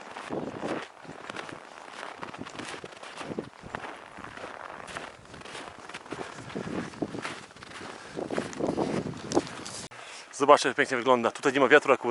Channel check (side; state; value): both; identical; correlation 1.00